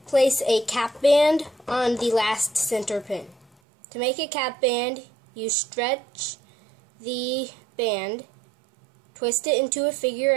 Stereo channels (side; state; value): left; drops out; at 3.5 s